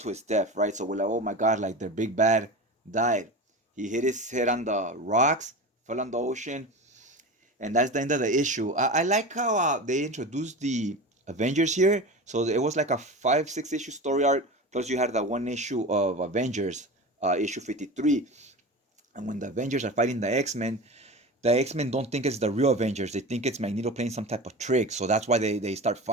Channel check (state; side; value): normal; both; correlation 0.29